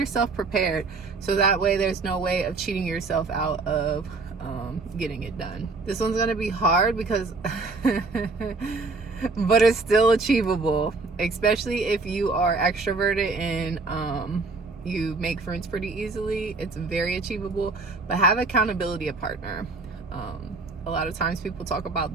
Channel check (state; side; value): quieter; left; 3.8 dB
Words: prepared, so that way there's no way of cheating yourself out of getting it done. This one's gonna be hard because but it's still achievable, especially if you are extroverted and you make friends pretty easily. It's very achievable, but have accountability a partner. A lot of times people talk about